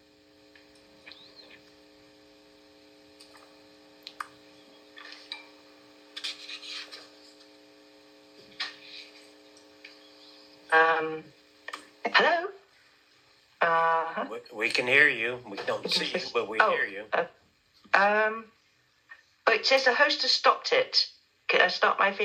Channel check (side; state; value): both; identical; correlation 1.00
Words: Hello? We can hear you. We don't see you, but we hear you. It says the host has stopped it. Can I start my